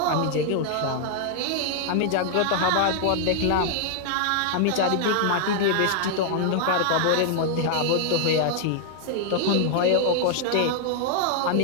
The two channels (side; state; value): both; different; correlation -0.01